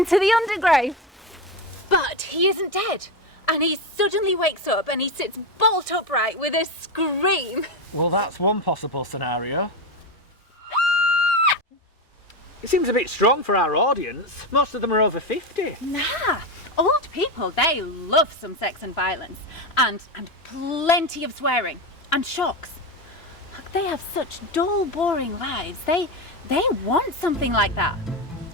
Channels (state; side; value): normal; both; correlation 0.15